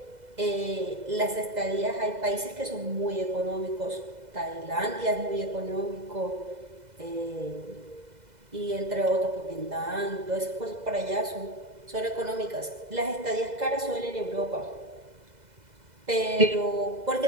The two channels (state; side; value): late; left; 2.0 ms